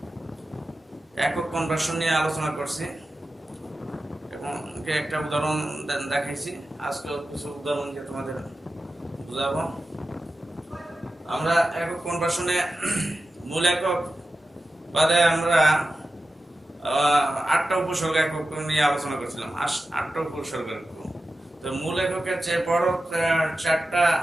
একক কনভার্সন নিয়ে আলোচনা করছি এবং একটা উদাহরণ দেখাইছি। আজকে কিছু উদাহরণ দিয়ে তোমাদের বুঝাবো। আমরা একক কনভার্সনে মূল একক বাদে আমরা 8টা উপসর্গ একক নিয়ে আলোচনা করছিলাম। 8টা উপসর্গ একক। তো মূল এককের চেয়ে বড় 4টা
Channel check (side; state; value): both; normal; correlation 0.92